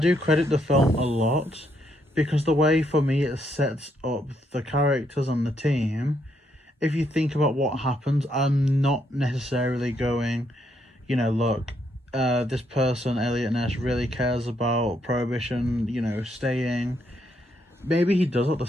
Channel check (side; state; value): both; normal; correlation 0.75